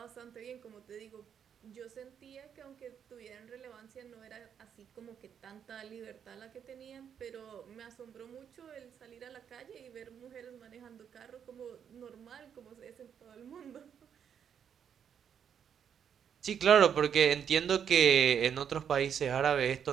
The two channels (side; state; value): left; quieter; 8.1 dB